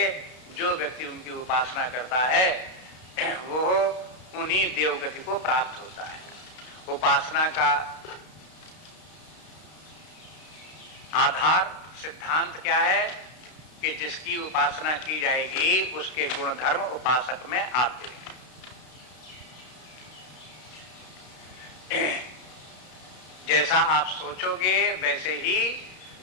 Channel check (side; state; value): right; late; 32 ms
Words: जो व्यक्ति उनकी उपासना करता है वो उन्हीं देवगति को प्राप्त होता है। उपासना का आधार सिद्धांत क्या है कि जिसकी उपासना की जाएगी उसके गुण धर्म उपासक में आते हैं। जैसा आप सोचोगे वैसे ही